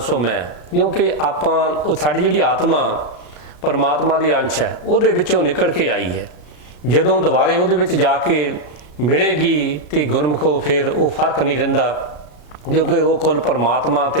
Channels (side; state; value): right; late; 33 ms